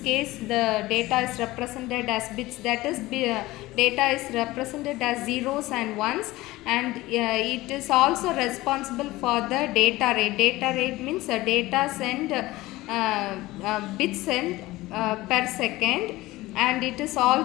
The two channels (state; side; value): quieter; right; 18.7 dB